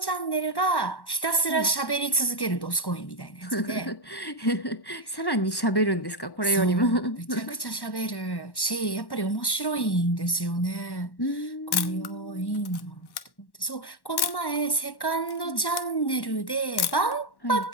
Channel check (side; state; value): right; late; 1.1 ms